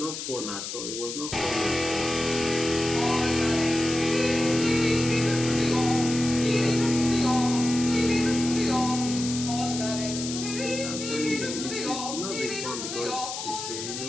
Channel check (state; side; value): noise; left; hiss, 7 dB below the sound